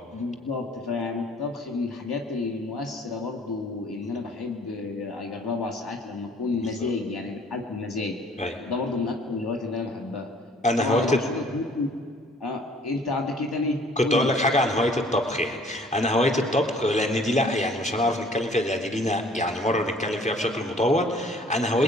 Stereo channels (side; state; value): both; normal; correlation 0.56